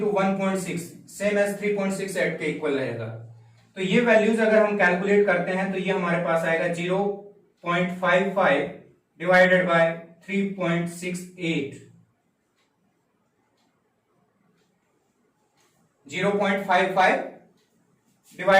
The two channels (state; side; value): identical; both; correlation 1.00